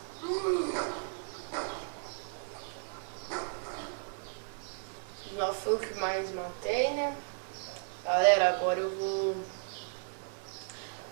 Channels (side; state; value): left; silent; 55 dB below the other